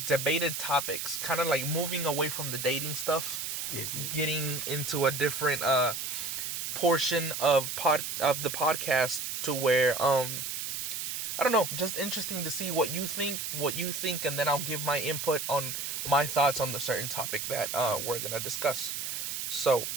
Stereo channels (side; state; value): right; noise; hiss, 4 dB below the sound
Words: debated topics, kind of like moving away from the dating stuff. Getting into a different portion of the podcast to where I don't know, just interesting to see what you think, and then I'll give my input on my thoughts on the certain topic that we're gonna discuss. So,